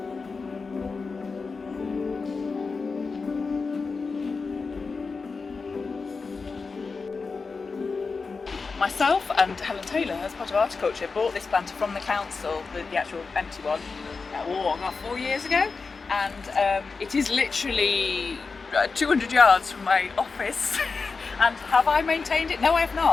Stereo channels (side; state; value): right; quieter; 4.5 dB